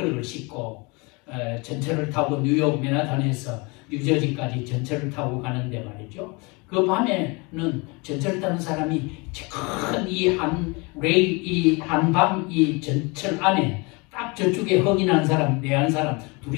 씻고, 전철을 타고 뉴욕 맨하탄에서 뉴저지까지 전철을 타고 가는데 말이죠. 그 밤에는 전철을 타는 사람이 큰 이 한방 이 전철 안에 딱 저쪽에 흑인한 사람, 내한 사람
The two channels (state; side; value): quieter; right; 28.3 dB